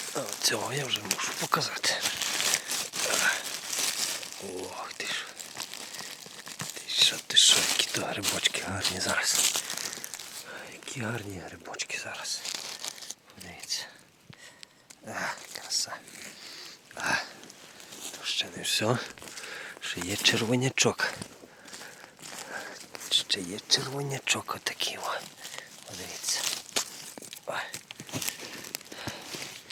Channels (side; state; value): both; identical; correlation 1.00